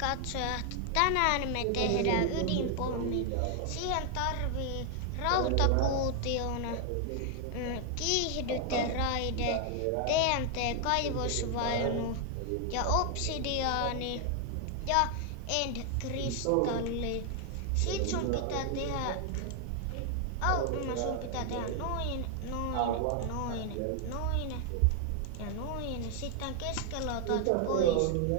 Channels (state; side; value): different; both; correlation 0.00